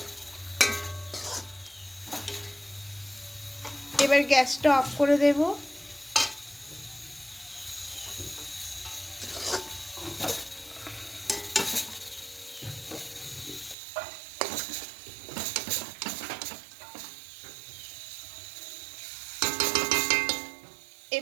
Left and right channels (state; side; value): drops out; left; at 13.8 s